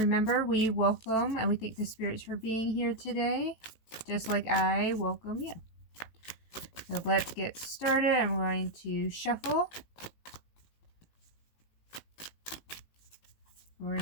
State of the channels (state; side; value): late; right; 18 ms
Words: we welcome and we thank the spirits for being here today. Just like I welcome you. So let's get started. I'm going to shuffle. We're